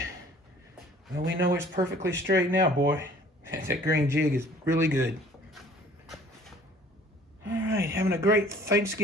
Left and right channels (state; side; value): normal; both; correlation 0.53